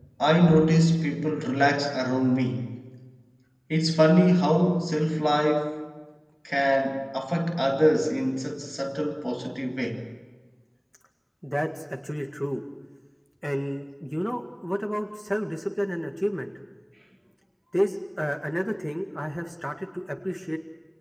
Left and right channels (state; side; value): identical; both; correlation 1.00